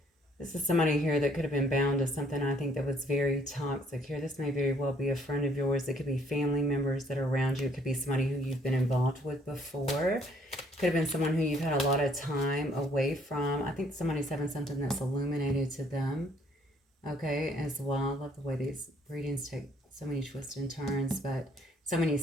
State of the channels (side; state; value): both; normal; correlation 0.63